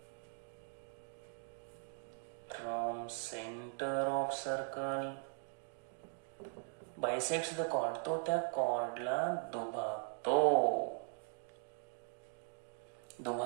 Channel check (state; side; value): silent; left; 51 dB below the other